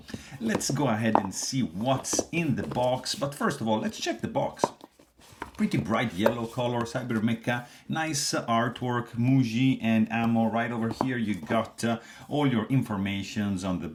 let's go ahead and see what's in the box, but first of all, let's check the box. Pretty bright yellow color, CyberMecha, nice artwork, Muyi and Ammo. Right over here you got all your informations on the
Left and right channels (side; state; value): both; identical; correlation 1.00